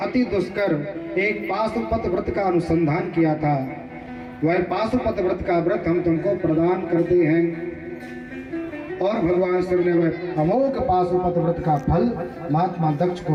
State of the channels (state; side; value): identical; both; correlation 1.00